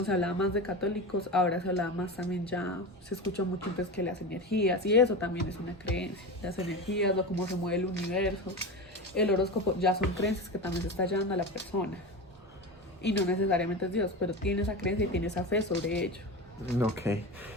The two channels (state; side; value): normal; both; correlation 0.25